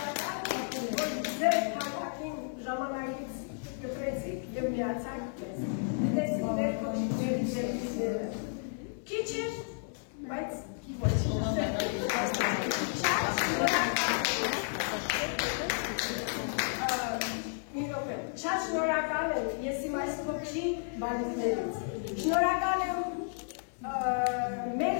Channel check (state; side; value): silent; right; 56 dB below the other